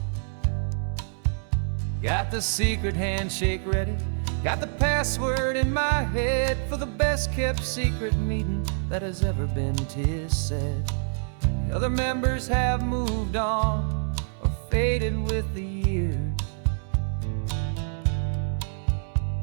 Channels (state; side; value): silent; left; 61 dB below the other